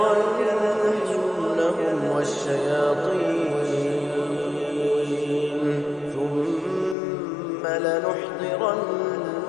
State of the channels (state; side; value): drops out; right; at 7.0 s